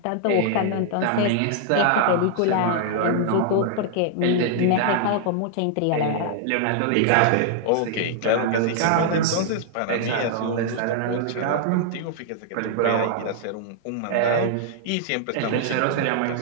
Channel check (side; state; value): both; different; correlation -0.01